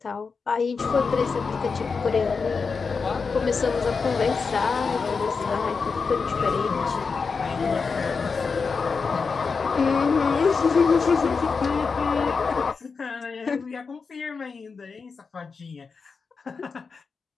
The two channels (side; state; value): right; quieter; 5.0 dB